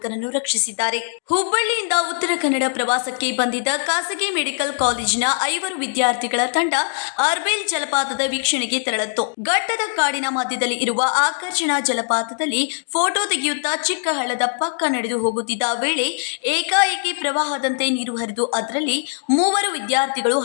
ರಕ್ಷಿಸಿದ್ದಾರೆ. ಹುಬ್ಬಳ್ಳಿಯಿಂದ ಉತ್ತರ ಕನ್ನಡ ಪ್ರವಾಸಕ್ಕೆ ಬಂದಿದ್ದ ಖಾಸಗಿ ಮೆಡಿಕಲ್ ಕಾಲೇಜಿನ 5 ವಿದ್ಯಾರ್ಥಿಗಳ ತಂಡ ಅರ್ಬೇಲ್ ಜಲಪಾತದ ವೀಕ್ಷಣೆಗೆ ತೆರಳಿತ್ತು. ಘಟ್ಟದ ಕಾಡಿನ ಮಧ್ಯದಲ್ಲಿ ಇರುವ ಆಕರ್ಷಣಾ ಜಲಪಾತದಲ್ಲಿ ಫೋಟೋ ತೆಗೆಯುತ್ತಾ ಚಿಕ್ಕ ಹಳ್ಳದ ಪಕ್ಕ ನಡೆದು ಹೋಗುತ್ತಿದ್ದ ವೇಳೆ ಏಕಾಏಕಿ ಪ್ರವಾಹದಂತೆ ನೀರು ಹರಿದು ಅದರಲ್ಲಿ 3 ವಿದ್ಯಾರ್ಥಿಗಳು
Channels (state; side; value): silent; right; digital silence